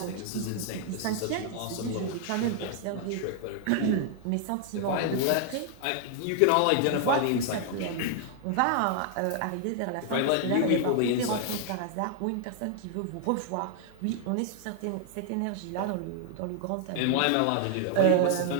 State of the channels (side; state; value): both; different; correlation 0.00